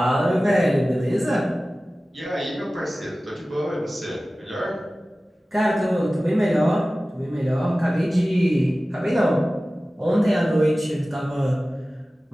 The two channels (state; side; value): normal; both; correlation 0.96